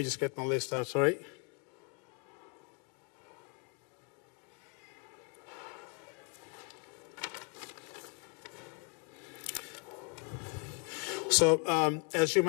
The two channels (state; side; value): quieter; right; 37.0 dB